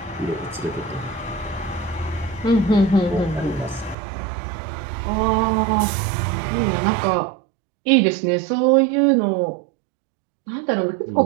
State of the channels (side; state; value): left; drops out; at 4.0 s